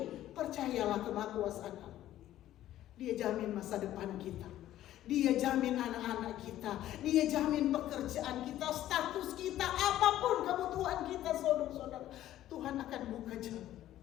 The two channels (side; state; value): right; quieter; 13.2 dB